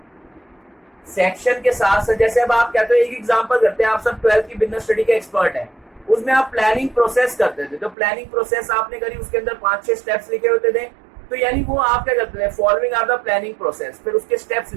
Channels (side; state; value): left; drops out; at 8.0 s